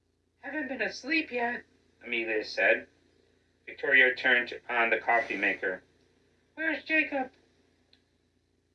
Haven't been asleep yet, Amelia said. Victoria turned on the coffee maker. Where's Jacob?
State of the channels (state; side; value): identical; both; correlation 1.00